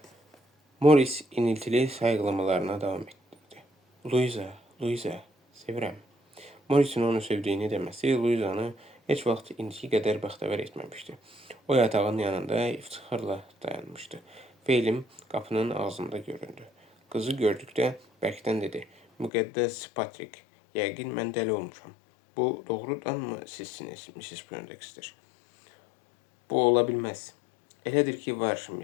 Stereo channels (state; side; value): drops out; right; at 19.3 s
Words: Morris iniltili sayıqlamalarına davam etdi. Louisa, sevirəm. Morris'in onu sevdiyini deməsi Louisa'nı heç vaxt indiki qədər bəxtəvər etməmişdi. O yatağın yanında iftixarla dayanmışdı. Feylim qapının ağzında göründü. Qızı gördükdə bərkdən dedi. Müqəddəs Patrik, yəqin mən dəli olmuşam. Bu doğrudanmı sizsiniz, Mrs. Poindexter? Bu ola bilməz. Elədir ki, var,